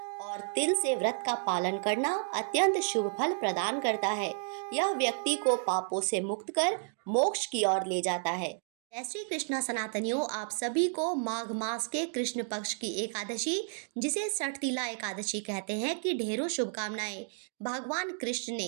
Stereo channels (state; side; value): silent; left; 57 dB below the other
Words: और तिल से व्रत का पालन करना अत्यंत शुभ फल प्रदान करता है। यह व्यक्ति को पापों से मुक्त कर मोक्ष की ओर ले जाता है। जय श्री कृष्णा सनातनियों, आप सभी को माघ मास के कृष्ण पक्ष की एकादशी, जिसे षटतिला एकादशी कहते हैं, की ढेरों शुभकामनाएं। भगवान कृष्ण